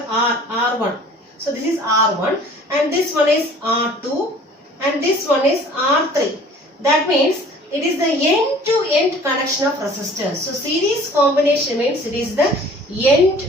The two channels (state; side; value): normal; both; correlation 0.49